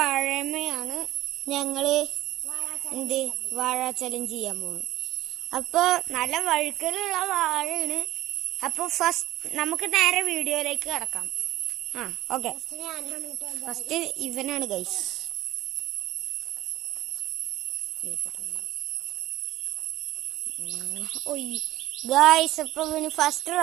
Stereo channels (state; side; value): quieter; left; 15.5 dB